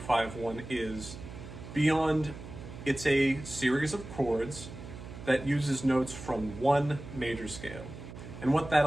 is, beyond it's a series of chords that uses notes from one major scale. And what that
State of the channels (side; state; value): right; noise; hum, 12 dB below the sound